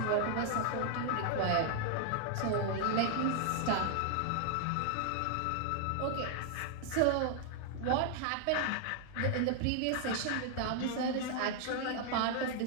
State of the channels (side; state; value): both; different; correlation 0.00